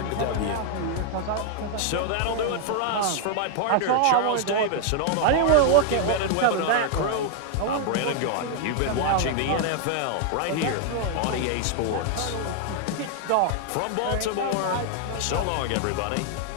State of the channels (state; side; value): different; both; correlation 0.00